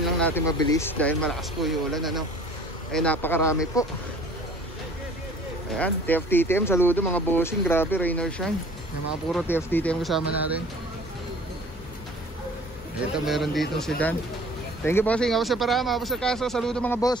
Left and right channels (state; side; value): normal; both; correlation 0.49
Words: lang natin mabilis dahil malakas po yung ulan napakarami po. Ayan, TFTTM, saludo mga bossing. Grabe, rain or shine. Yung mga puro TFTTM kasama natin. Ito, meron dito sedan. Thank you bossing, ako sa Parama, ako sa Kaso. Saludo mga